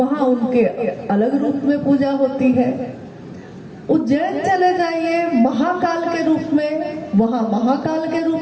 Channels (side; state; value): both; identical; correlation 1.00